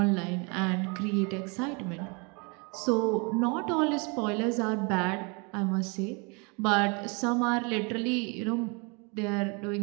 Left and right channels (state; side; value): quieter; left; 31.9 dB